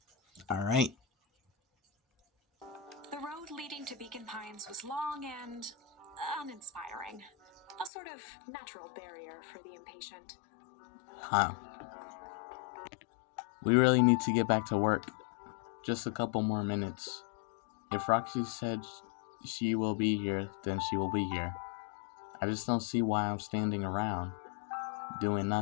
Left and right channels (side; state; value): right; drops out; at 7.9 s